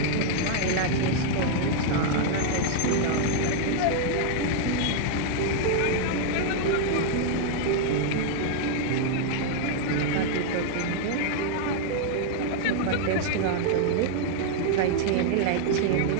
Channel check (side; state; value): both; different; correlation 0.00